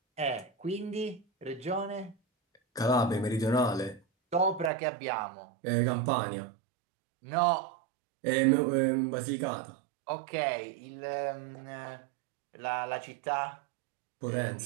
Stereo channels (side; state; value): left; drops out; at 4.7 s